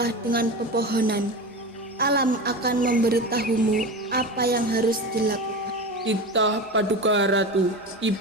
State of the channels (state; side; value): normal; both; correlation 0.26